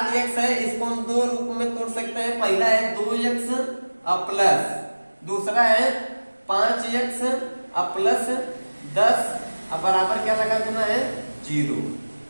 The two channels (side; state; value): both; inverted; correlation -1.00